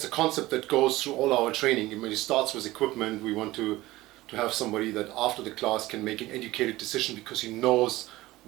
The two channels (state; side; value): quieter; left; 18.1 dB